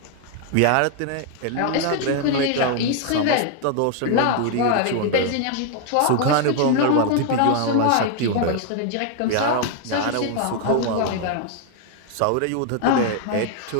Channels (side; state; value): both; different; correlation 0.00